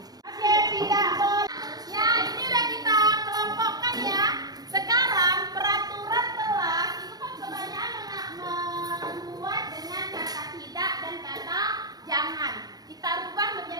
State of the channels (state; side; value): late; left; 0.19 ms